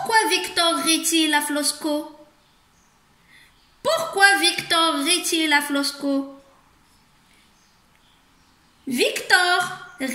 Victor rit-il à Flosko? Pourquoi Victor rit-il à Flosko? Victor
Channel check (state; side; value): identical; both; correlation 1.00